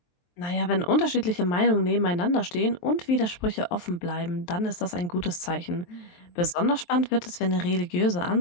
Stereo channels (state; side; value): late; right; 23 ms